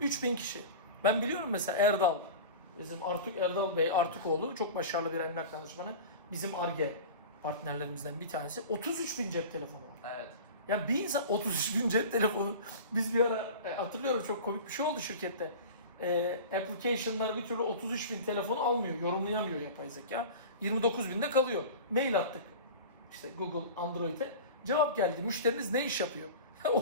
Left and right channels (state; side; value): inverted; both; correlation -0.34